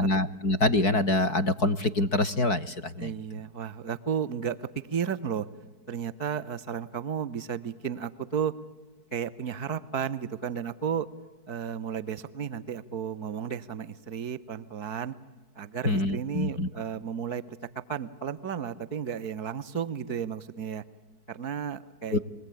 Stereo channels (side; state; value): right; late; 4.6 ms